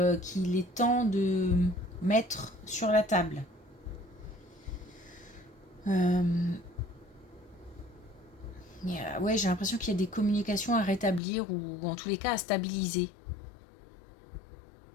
qu'il est temps de mettre sur la table. Ouais, j'ai l'impression qu'il y a des communications à rétablir ou en tous les cas à stabiliser.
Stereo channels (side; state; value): right; drops out; at 11.2 s